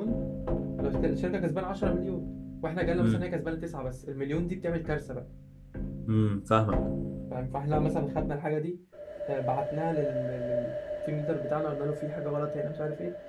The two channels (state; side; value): identical; both; correlation 1.00